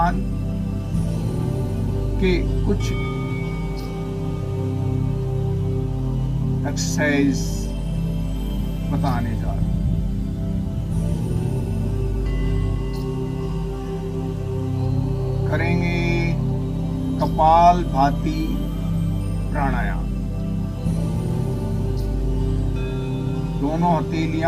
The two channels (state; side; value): identical; both; correlation 1.00